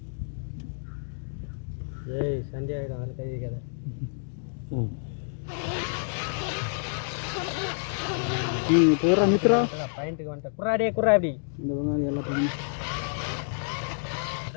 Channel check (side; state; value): right; silent; digital silence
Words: நித்ரா பாயிண்ட்டுக்கு வந்துட்டேன். குர்ராடே குர்ரா அப்படி இந்த வெங்காயம் எல்லாம் பண்ணி.